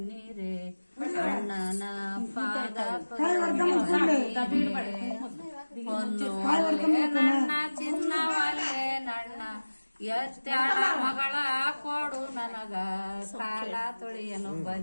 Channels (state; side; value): inverted; both; correlation -1.00